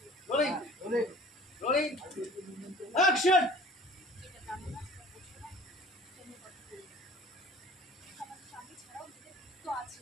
রোলিং রোলিং রোলিং অ্যাকশন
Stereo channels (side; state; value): both; normal; correlation 0.46